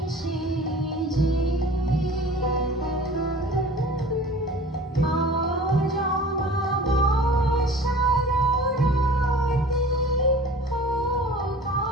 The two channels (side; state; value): both; normal; correlation 0.43